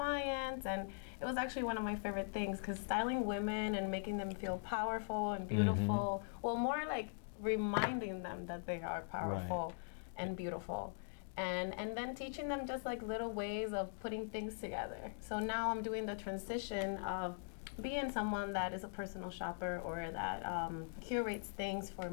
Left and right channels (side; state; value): right; silent; digital silence